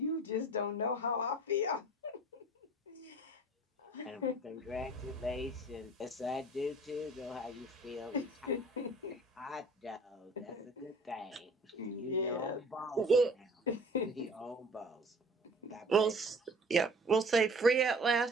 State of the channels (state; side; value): normal; both; correlation 0.47